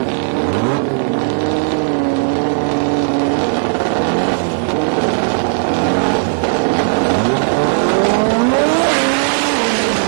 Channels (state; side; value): silent; left; 69 dB below the other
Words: lane, so it was in the left-hand lane. Be rolling in to get staged. We go up against the rev limiter, stopping from over-revving the